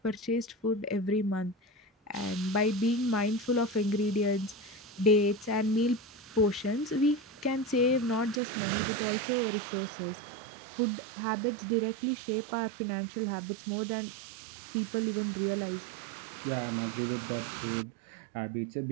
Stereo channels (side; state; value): left; drops out; at 8.4 s